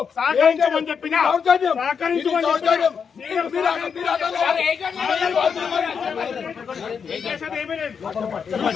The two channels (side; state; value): right; quieter; 6.5 dB